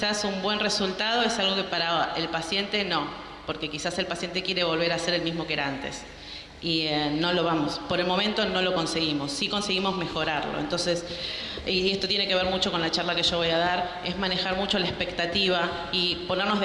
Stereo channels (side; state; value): both; identical; correlation 1.00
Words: un buen resultado es algo que para el paciente no, porque quizás el paciente quiere volver a ser el mismo que era antes. Y no lo vamos, por el momento no lo conseguimos, sí conseguimos mejorarlo. Entonces, y esto tiene que ver mucho con la charla que yo voy a dar, es manejar mucho la expectativa y ponernos